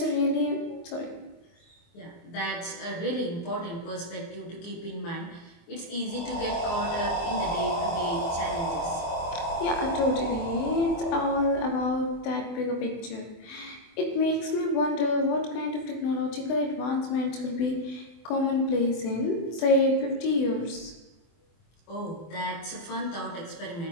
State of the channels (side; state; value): right; late; 24 ms